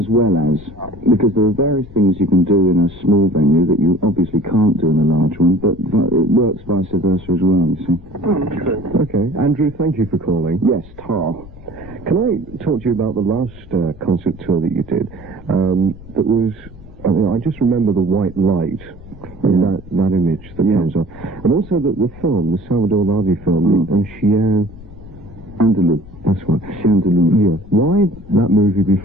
well as, because there are various things you can do in a small venue that you obviously can't do in a large one, but it works vice versa as well, you see. True. Okay. Andrew, thank you for calling. Yes, Tar. Can I talk to you about the last concert tour that you did? That was... I just remember the white light, and that image that comes on. And also the film, the Salvador Dali film, and Chien Andalou. That's right. Chien Andalou. Yeah. Why that movie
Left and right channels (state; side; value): noise; left; rumble, 18 dB below the sound